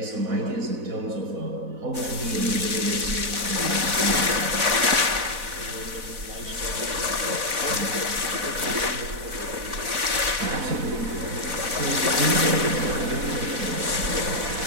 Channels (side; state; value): left; late; 4.1 ms